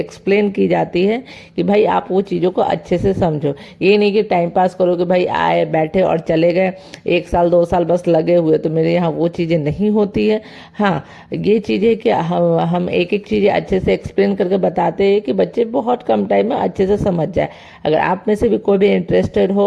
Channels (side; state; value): both; identical; correlation 1.00